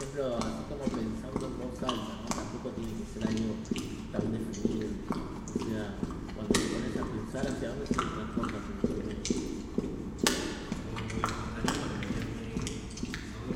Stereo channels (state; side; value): identical; both; correlation 1.00